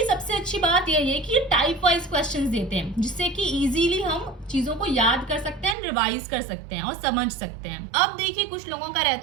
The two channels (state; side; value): drops out; left; at 5.8 s